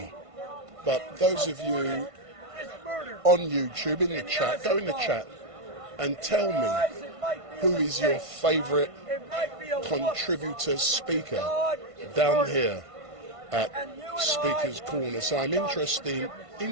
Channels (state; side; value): late; left; 1.5 ms